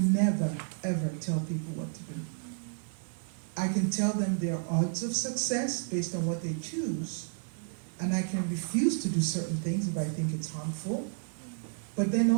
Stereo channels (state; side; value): silent; left; 57 dB below the other